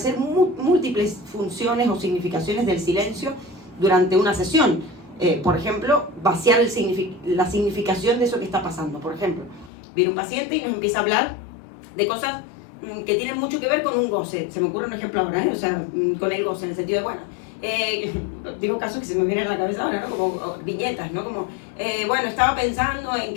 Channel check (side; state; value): right; drops out; at 9.7 s